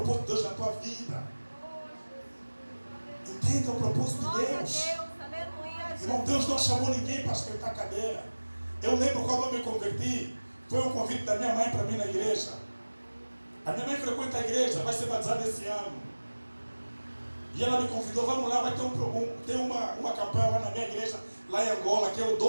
de Deus na tua vida. Entenda o propósito de Deus. Irmão, Deus não chamou ninguém para esquentar cadeira. Eu lembro quando eu me converti, foi um convite da minha mãe para mim na igreja. A minha mãe frequenta a igreja, vai ser batizada esse ano. E ela me convidou, vamos lá, vai ter uma campanha lá na minha igreja, lá em Angola, que é o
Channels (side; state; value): both; inverted; correlation -1.00